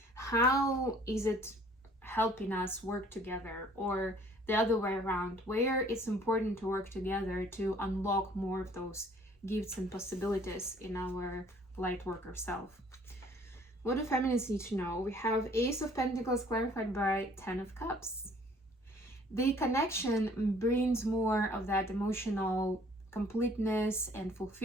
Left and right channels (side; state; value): both; normal; correlation 0.57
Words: How is it helping us work together, or the other way around, where it's important to work together to unlock more of those gifts and possibilities in our light worker self? What do feminists need to know? We have Ace of Pentacles clarified by 10 of Cups. The connection brings more of that emotional completeness and